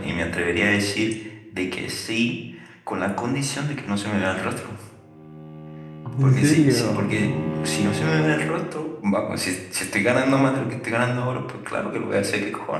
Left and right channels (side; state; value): both; identical; correlation 1.00